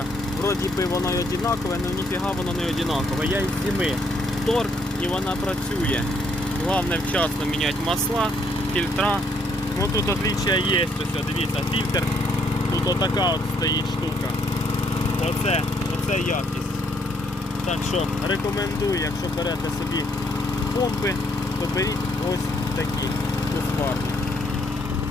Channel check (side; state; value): both; normal; correlation 0.70